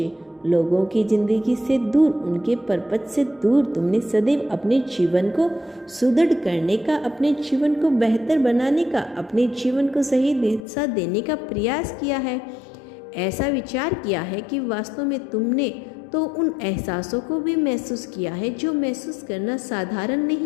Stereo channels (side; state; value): right; drops out; at 10.6 s